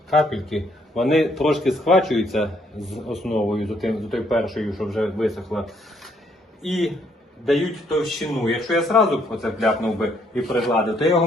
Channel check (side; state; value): both; normal; correlation 0.69